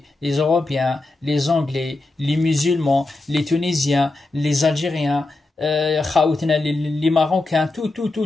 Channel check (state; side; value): quieter; right; 3.0 dB